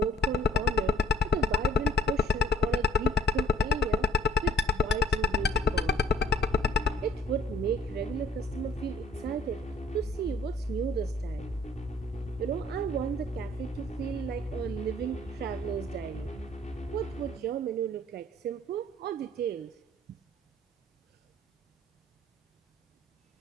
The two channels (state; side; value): normal; both; correlation 0.56